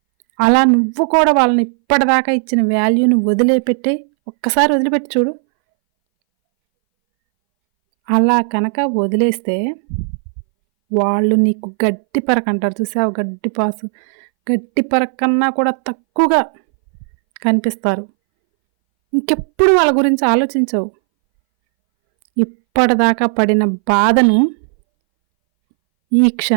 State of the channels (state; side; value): silent; left; 64 dB below the other